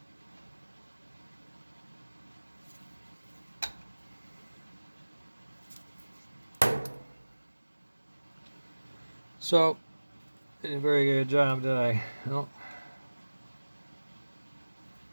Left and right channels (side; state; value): both; inverted; correlation -1.00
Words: So, did a very good job, did I? Nope.